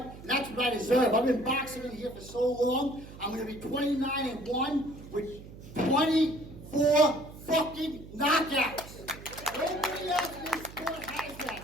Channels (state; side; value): noise; right; hum, 16 dB below the sound